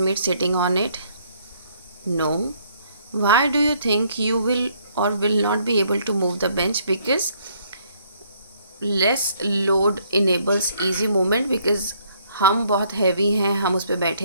sitting on it? No. Why do you think you will or will not be able to move the bench? Because less load enables easy movement, because हम बहुत heavy हैं, हम उस पर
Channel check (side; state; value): both; inverted; correlation -0.66